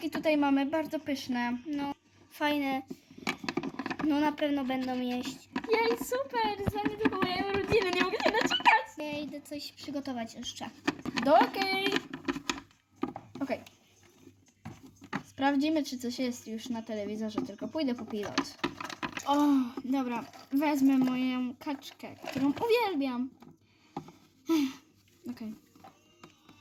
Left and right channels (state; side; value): identical; both; correlation 1.00